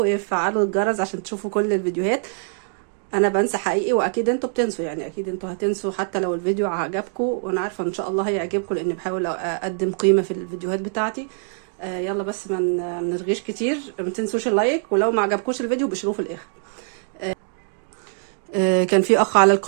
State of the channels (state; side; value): silent; left; digital silence